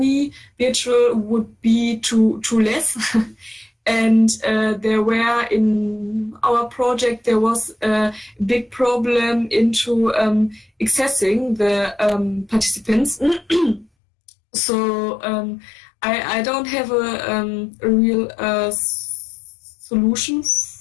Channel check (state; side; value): drops out; right; at 13.9 s